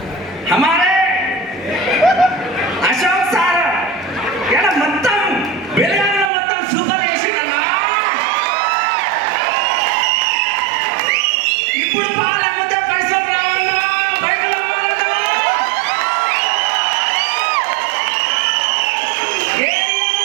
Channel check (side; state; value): left; drops out; at 6.3 s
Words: हमारे अशोक सार यार మొత్తం బెలగాంలో మొత్తం సూపర్ చేసిందన్నా। ఇప్పుడు పాల ముందే పైసలు రావన్నా, బైకులు అమ్మాలన్నా।